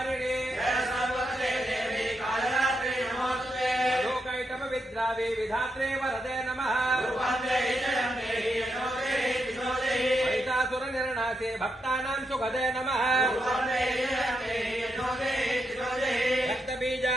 लोकैटमविद्रावे विधात्रे वरदे नमः महिषासुरनिर्णासे भक्तानां सुखदे नमः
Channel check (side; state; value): both; normal; correlation 0.83